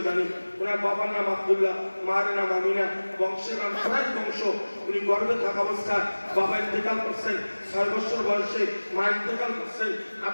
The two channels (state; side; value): inverted; both; correlation -1.00